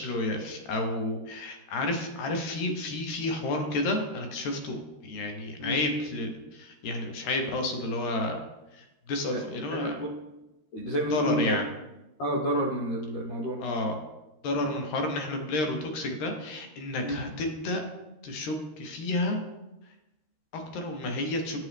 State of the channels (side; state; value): right; late; 13 ms